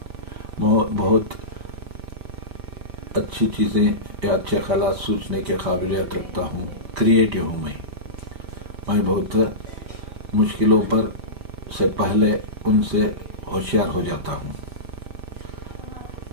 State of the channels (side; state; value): left; late; 5.1 ms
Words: بہت اچھی چیزیں یا اچھے خیالات سوچنے کے قابلیت رکھتا ہوں، کریٹو ہوں میں بہت مشکلوں پر سے پہلے ان سے ہوشیار ہو جاتا ہوں،